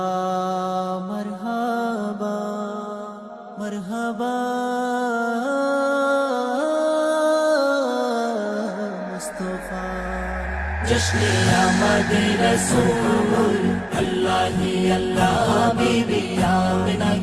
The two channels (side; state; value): both; identical; correlation 1.00